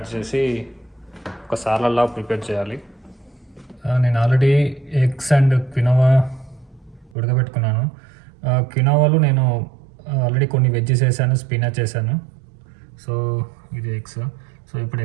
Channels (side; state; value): left; drops out; at 7.2 s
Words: చేసి ఒక సాలడ్లా ప్రిపేర్ చేయాలి. నేను ఆల్రెడీ ఎగ్స్ అండ్ క్వినోవా ఉడకబెట్టుకున్నాను. క్వినోవాలో నేను ఆల్రెడీ కొన్ని వెజ్జెస్ వేసాను, స్పినాచ్ వేసాను. సో ఇది ఎగ్స్. సో ఇప్పుడు